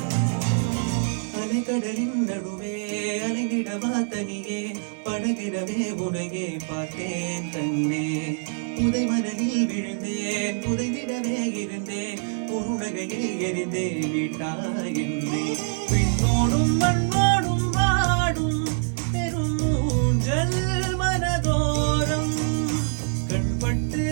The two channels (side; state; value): left; silent; digital silence